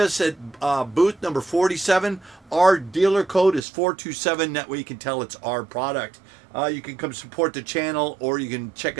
at booth number 47. Our dealer code is 427. That way you can tell it's our product. You can come support the channel, or you can check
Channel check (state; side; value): drops out; left; at 3.6 s